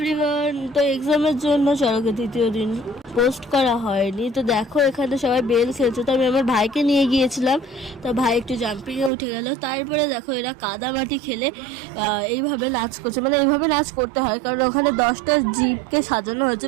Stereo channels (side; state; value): left; drops out; at 9.1 s